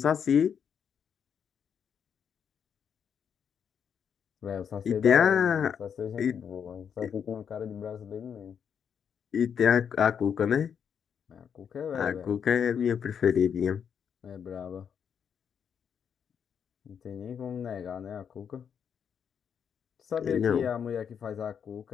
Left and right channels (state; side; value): quieter; right; 7.6 dB